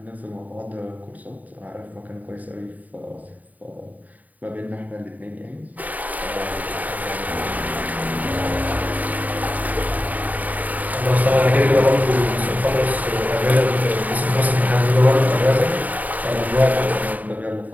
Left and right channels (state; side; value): late; left; 0.077 ms